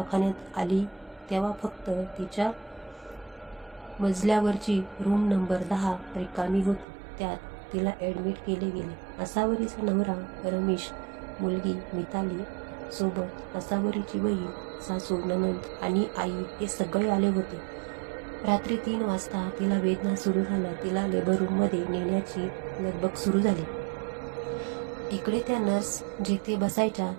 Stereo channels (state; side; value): drops out; left; at 6.9 s